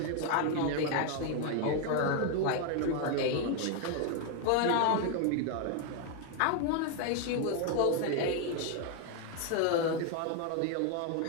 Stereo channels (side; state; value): both; different; correlation 0.01